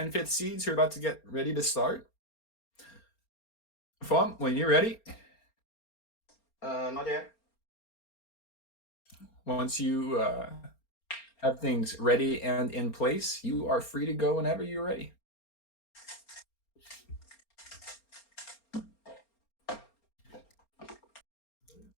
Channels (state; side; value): late; right; 4.3 ms